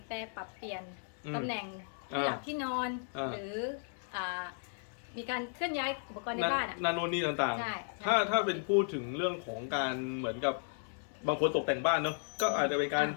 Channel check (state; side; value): silent; right; 55 dB below the other